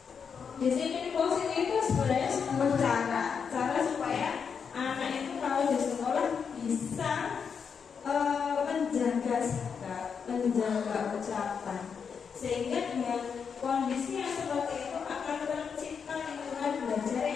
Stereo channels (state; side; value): quieter; right; 6.4 dB